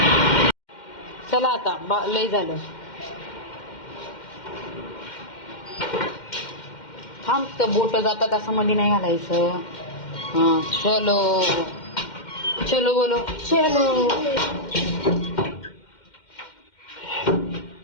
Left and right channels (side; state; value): right; late; 2.1 ms